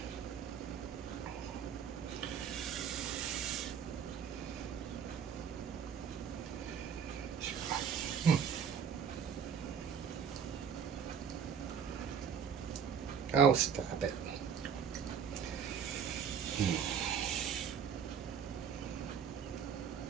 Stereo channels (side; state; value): left; quieter; 7.4 dB